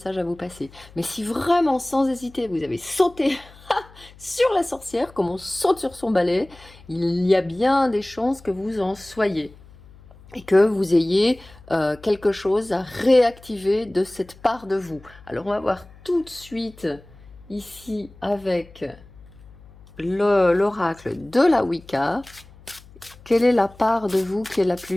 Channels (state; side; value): noise; left; hum, 23 dB below the sound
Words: à vous passer. Mais si vraiment, sans hésiter, vous avez sauté sur la sorcière, comme on saute sur son balai, il y a bien des chances que vous en soyez et que vous ayez quelque chose à réactiver de cette part de vous. Alors on va voir tout de suite ici avec l'oracle de la Wicca. Quelle est la part de vous qui est la